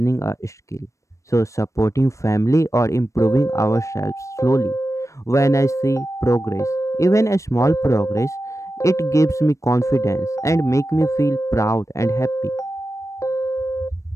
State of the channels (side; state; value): right; late; 0.15 ms